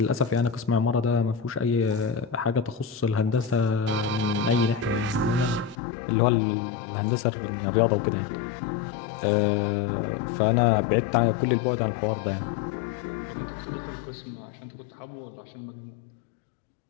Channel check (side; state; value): right; drops out; at 5.8 s